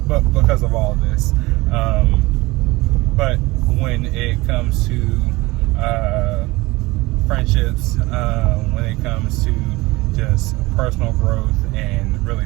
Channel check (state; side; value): quieter; left; 21.3 dB